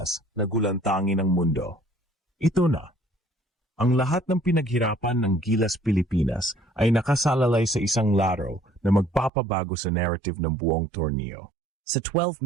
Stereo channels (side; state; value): left; drops out; at 9.3 s